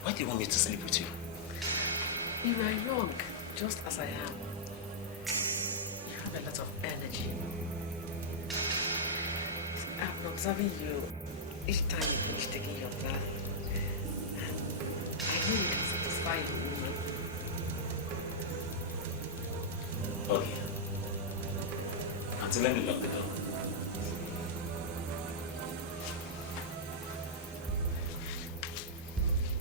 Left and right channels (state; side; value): normal; both; correlation -0.08